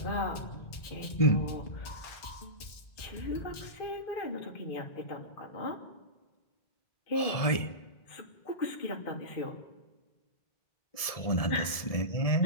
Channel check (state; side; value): late; right; 1.7 ms